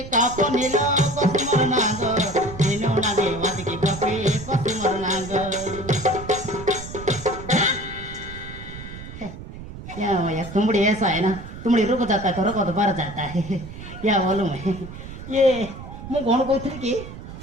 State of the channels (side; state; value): right; noise; rumble, 12 dB below the sound